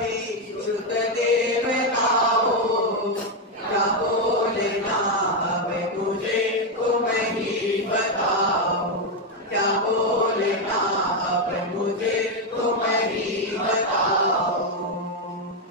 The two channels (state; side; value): normal; both; correlation 0.05